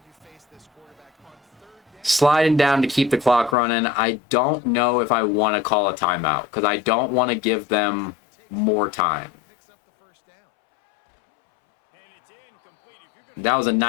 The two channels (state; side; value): drops out; right; at 3.6 s